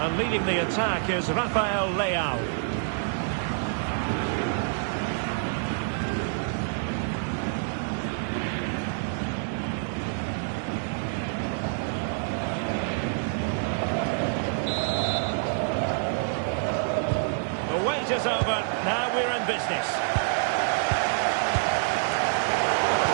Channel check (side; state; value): left; silent; 60 dB below the other